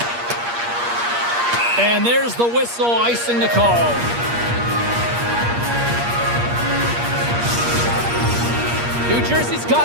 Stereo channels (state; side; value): late; left; 8.5 ms